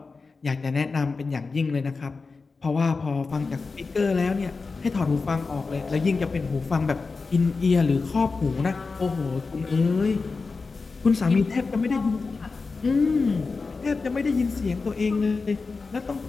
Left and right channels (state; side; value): quieter; right; 4.3 dB